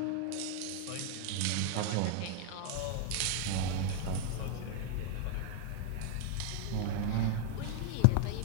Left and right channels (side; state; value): both; different; correlation 0.00